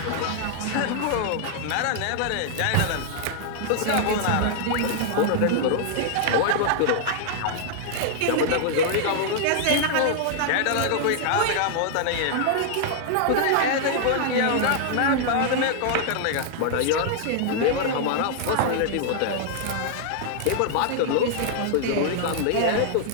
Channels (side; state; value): both; different; correlation -0.01